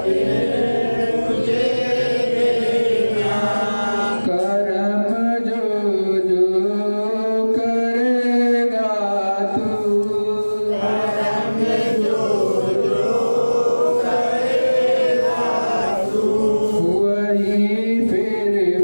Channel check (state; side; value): inverted; both; correlation -1.00